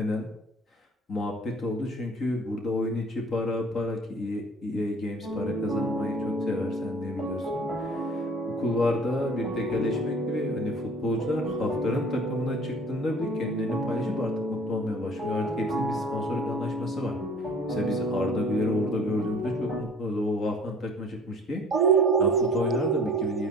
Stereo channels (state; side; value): normal; both; correlation 0.49